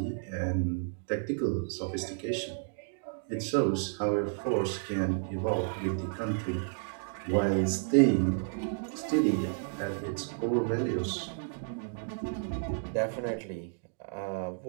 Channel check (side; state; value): left; silent; digital silence